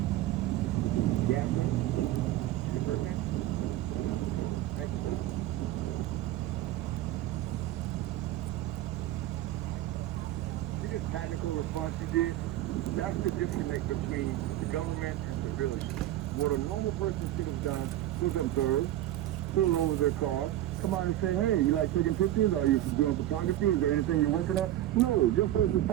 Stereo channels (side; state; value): left; quieter; 13.7 dB